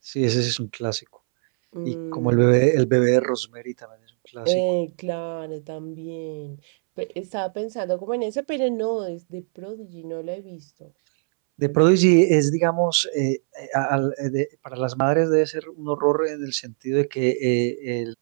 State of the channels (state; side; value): silent; left; 64 dB below the other